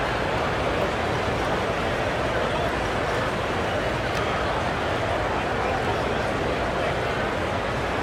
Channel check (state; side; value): identical; both; correlation 1.00